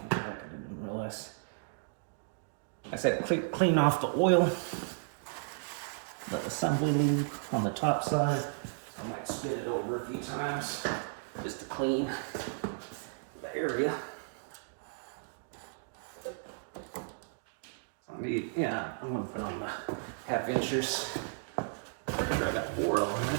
the jack. I didn't realize. I said clean off the oil, the assembly lube on the top side. I might spin it over a few times just to clean the area. I need, I'm gonna put on the 1/2 inchers. Pretty sure I got 4 of them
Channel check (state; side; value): silent; left; digital silence